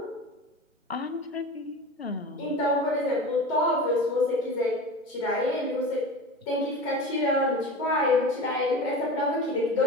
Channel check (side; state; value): both; normal; correlation 0.32